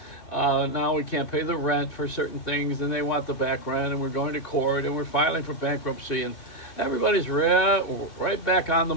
Now we can't pay the rent for certain things, and they want the back rent, and we're going to court, and we're filing for bankruptcy, and everybody's right back on the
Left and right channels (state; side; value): late; right; 2.3 ms